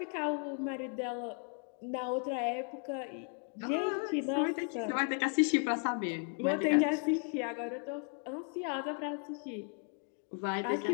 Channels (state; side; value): quieter; right; 39.1 dB